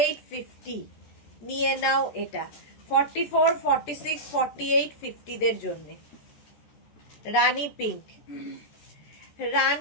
50 নিয়ে নাও এটা। 44, 46, 48, 50 দের জন্য। রানী পিঙ্ক,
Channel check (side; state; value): right; late; 14 ms